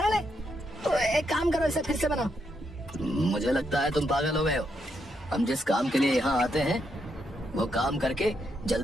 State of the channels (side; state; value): both; normal; correlation 0.80